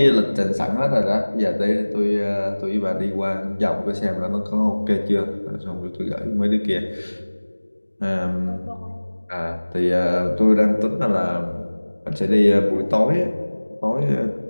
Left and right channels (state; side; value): inverted; both; correlation -1.00